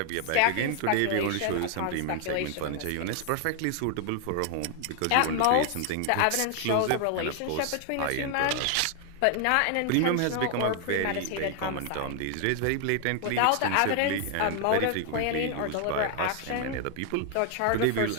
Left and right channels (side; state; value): both; different; correlation 0.00